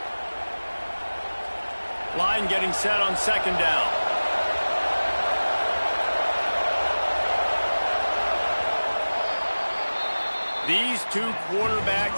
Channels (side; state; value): both; inverted; correlation -1.00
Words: Line getting set on 2nd down. These 2